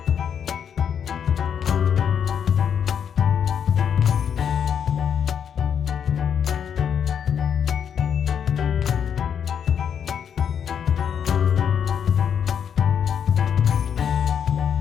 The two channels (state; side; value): quieter; right; 8.0 dB